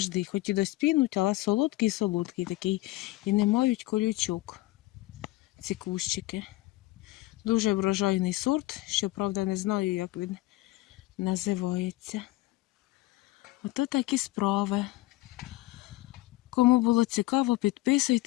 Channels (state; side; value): quieter; right; 18.5 dB